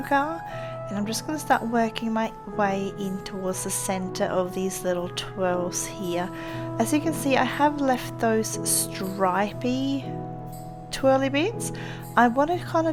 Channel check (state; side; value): identical; both; correlation 1.00